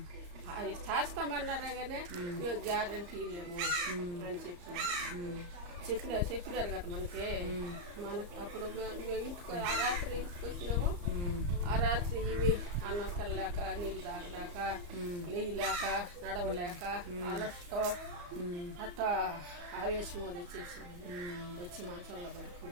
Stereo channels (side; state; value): left; late; 34 ms